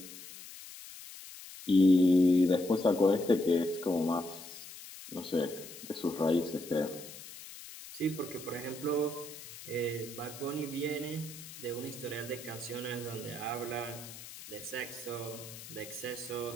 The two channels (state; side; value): noise; left; hiss, 14 dB below the sound